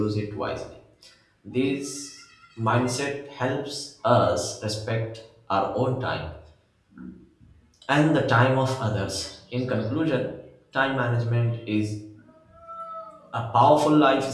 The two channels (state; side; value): identical; both; correlation 1.00